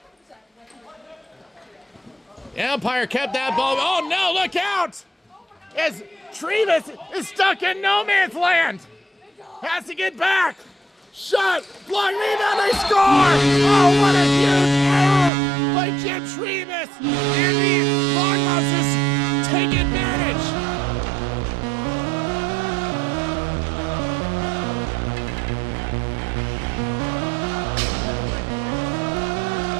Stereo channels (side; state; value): left; drops out; at 15.3 s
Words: The Empire kept that ball. Oh no, look out! As Trevis is stuck in no man's land. Has to get back. Shot, block, rebound, they score! Oh, what a huge error by Jim Trevis. And the Lock Monsters take advantage.